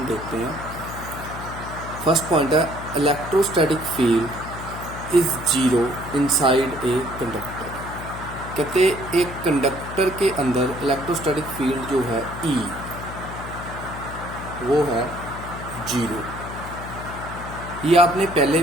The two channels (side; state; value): left; noise; hum, 10 dB below the sound